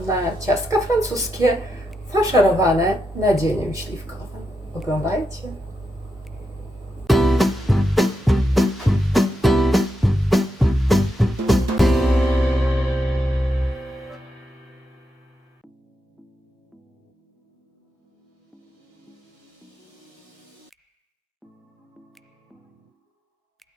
na ciastka francuskie faszerowane nadzieniem śliwkowym. Oglądajcie.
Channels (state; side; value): normal; both; correlation 0.84